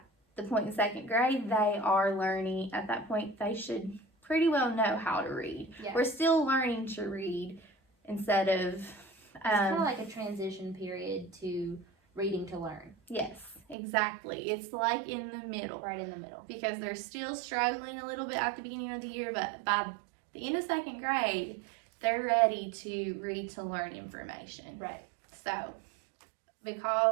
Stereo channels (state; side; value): drops out; left; at 13.8 s